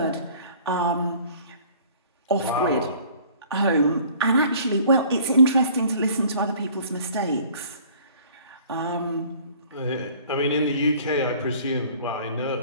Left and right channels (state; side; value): inverted; both; correlation -0.51